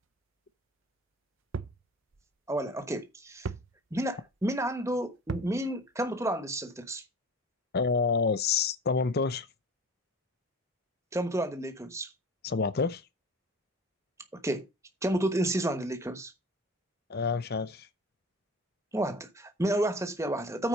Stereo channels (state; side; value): normal; both; correlation 0.40